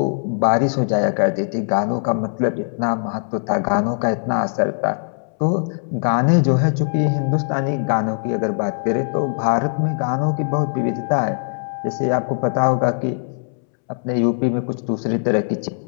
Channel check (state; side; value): silent; right; 65 dB below the other